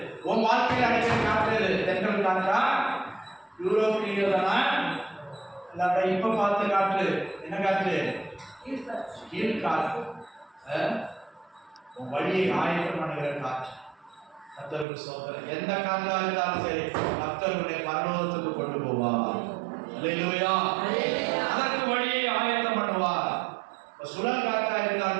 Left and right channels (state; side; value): drops out; left; at 14.9 s